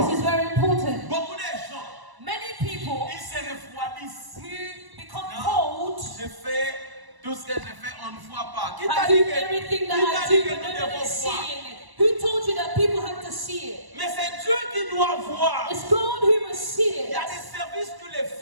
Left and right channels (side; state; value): left; late; 1.0 ms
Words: This is very important. Beaucoup de gens, Many people ils se refroidissent. who become Non, cold, je fais tout ce que je fais, on ne voit pas. Qui t'a I dit do que, everything qui that t'a I dit do, que but nous no one devons is voir? seeing it. Who told you that people have to see it? Mais c'est Dieu qui doit voir. It's God who must see Il y it. a des services que tu les